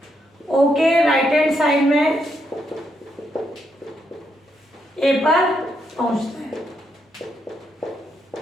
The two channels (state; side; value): normal; both; correlation 0.78